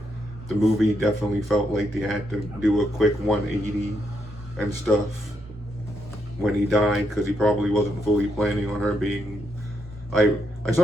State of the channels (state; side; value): normal; both; correlation 0.79